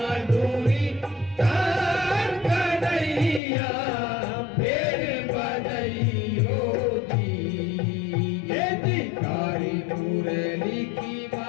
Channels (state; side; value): drops out; right; at 3.4 s